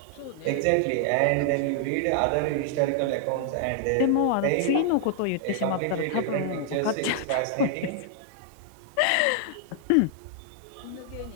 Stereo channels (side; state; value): both; different; correlation -0.01